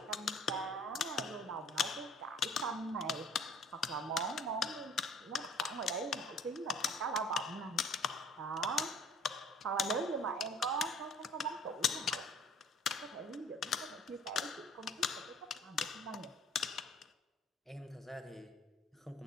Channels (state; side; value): normal; both; correlation 0.54